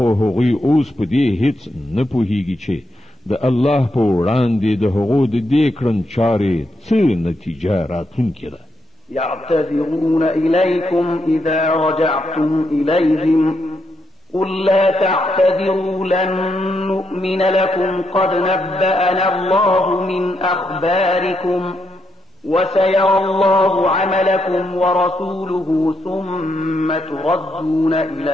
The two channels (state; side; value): normal; both; correlation 0.81